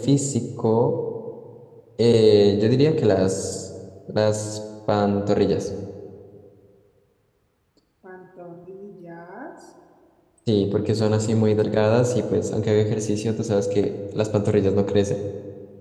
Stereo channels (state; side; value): identical; both; correlation 1.00